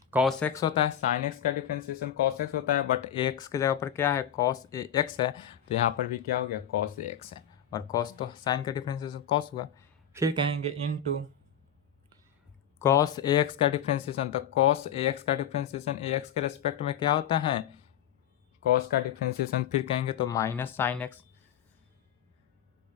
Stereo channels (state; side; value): quieter; right; 8.9 dB